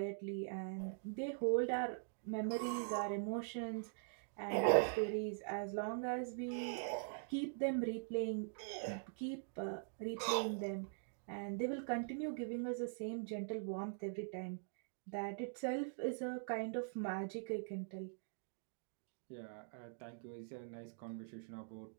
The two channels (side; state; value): left; silent; digital silence